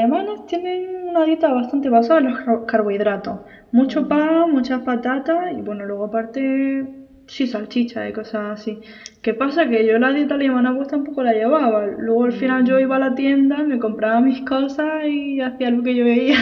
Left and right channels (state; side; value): identical; both; correlation 1.00